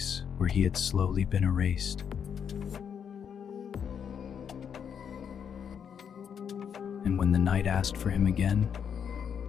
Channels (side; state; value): right; quieter; 7.7 dB